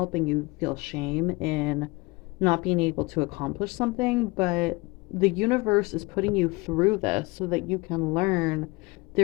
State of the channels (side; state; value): right; quieter; 24.5 dB